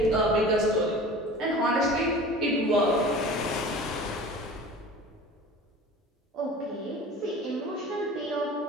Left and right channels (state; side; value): normal; both; correlation 0.40